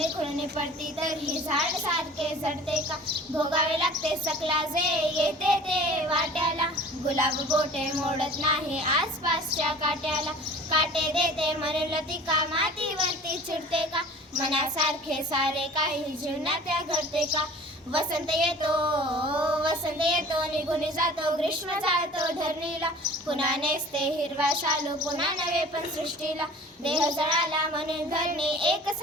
खुळणी पडती तर ही झाड सारखे झडते का? भोगावे लागते सकला जे येते ते वाट्याला. गुलाब गोटे मोडत नाही आसपासच्या काट्याला. काटे देते म्हणून लतिका मातीवरती चिडते का? मनासारखे सारे काही जीवनात या घडते का? वसंत येतो निघून जातो, ग्रीष्म जातो धरणीला. पुन्हा नेसते हिरवा शालू, पुन्हा नवे पण सृष्टीला. देह जळाला म्हणून धरणी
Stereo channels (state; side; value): normal; both; correlation 0.44